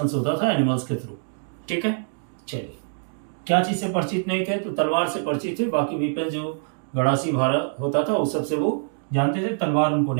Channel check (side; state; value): left; silent; digital silence